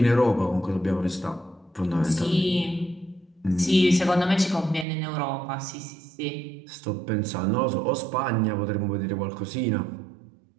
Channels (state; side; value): drops out; left; at 4.9 s